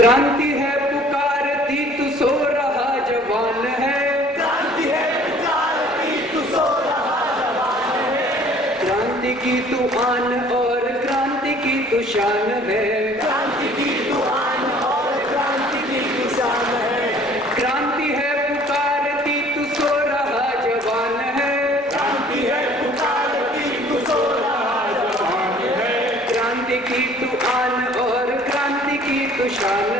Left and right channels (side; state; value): both; normal; correlation 0.53